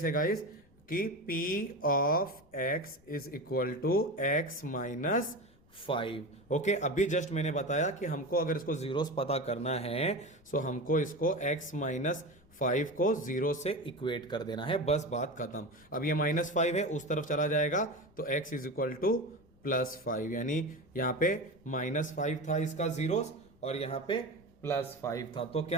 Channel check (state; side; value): noise; left; rumble, 29 dB below the sound